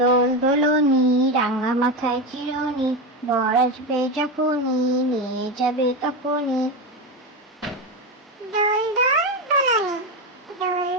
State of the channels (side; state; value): both; normal; correlation 0.15